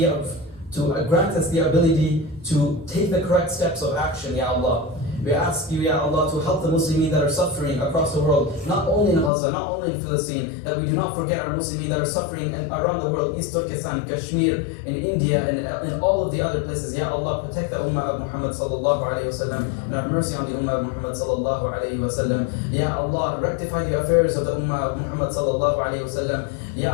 to grant us the ability to take the correct steps of action, Ya Allah. We ask you, Ya Allah, to help the Muslimin that are suffering across the world, not only in Gaza, not only in Palestine, that we do not forget our Muslimin that are suffering around the world, East Turkestan, Kashmir, in India, and in all of the other places. Ya Allah, protect the ummah of Muhammad sallallahu alayhi wa sallam, and have mercy on the ummah of Muhammad sallallahu alayhi wa sallam. Ya Allah, rectify the affairs of the ummah of Muhammad sallallahu alayhi wa sallam.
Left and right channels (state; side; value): drops out; right; at 9.3 s